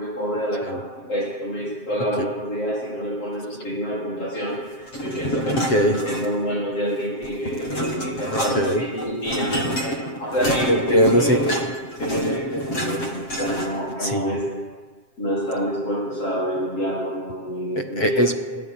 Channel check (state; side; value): late; right; 7.6 ms